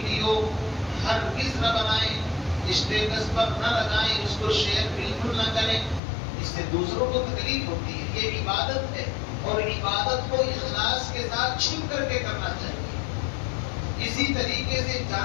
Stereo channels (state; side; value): drops out; right; at 6.0 s